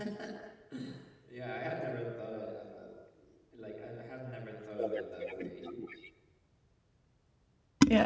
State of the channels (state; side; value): identical; both; correlation 1.00